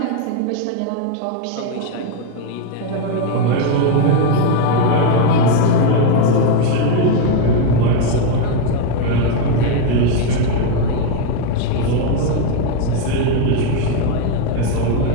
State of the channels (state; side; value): different; both; correlation 0.02